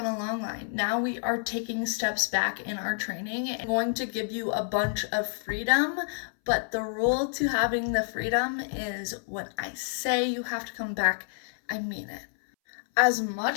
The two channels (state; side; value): silent; right; 59 dB below the other